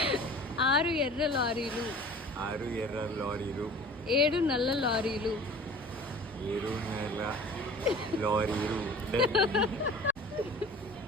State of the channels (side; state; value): both; normal; correlation 0.43